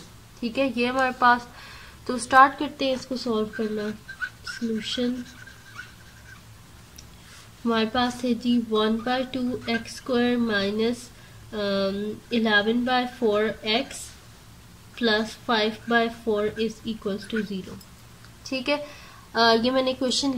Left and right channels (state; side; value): identical; both; correlation 1.00